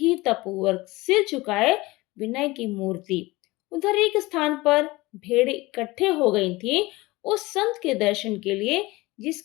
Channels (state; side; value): quieter; right; 21.1 dB